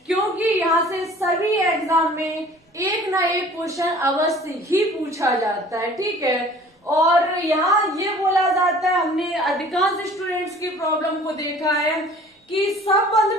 क्योंकि यहाँ से सभी एग्जाम में एक ना एक क्वेश्चन अवश्य ही पूछा जाता है। ठीक है, और यहाँ ये बोला जाता है, हमने अधिकांश स्टूडेंट्स की प्रॉब्लम को देखा है कि सब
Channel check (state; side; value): normal; both; correlation 0.48